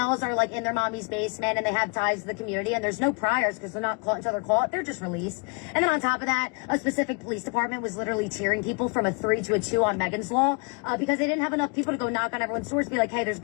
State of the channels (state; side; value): quieter; right; 33.1 dB